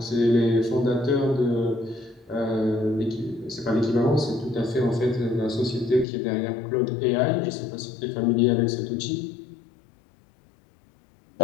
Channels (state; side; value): drops out; right; at 6.1 s